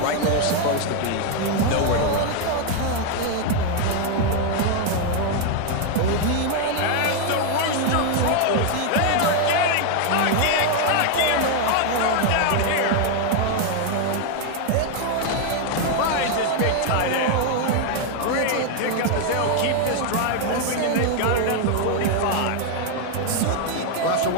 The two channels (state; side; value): different; both; correlation 0.00